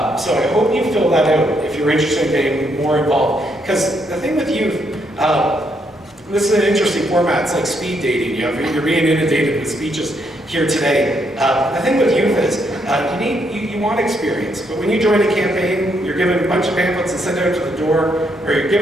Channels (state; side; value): normal; both; correlation 0.75